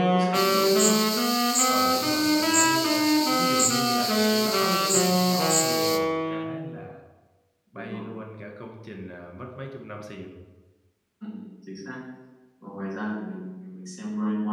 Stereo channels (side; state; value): both; identical; correlation 1.00